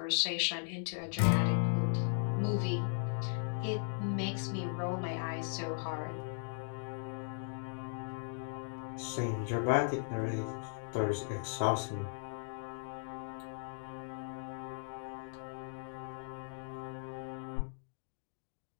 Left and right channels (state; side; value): silent; right; digital silence